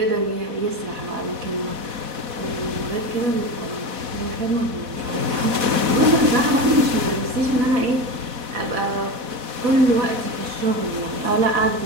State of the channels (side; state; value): left; late; 4.1 ms